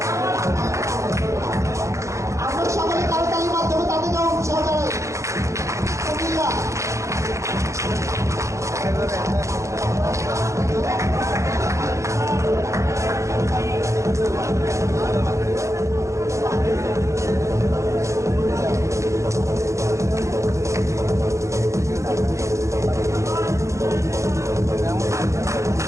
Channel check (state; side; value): late; left; 0.15 ms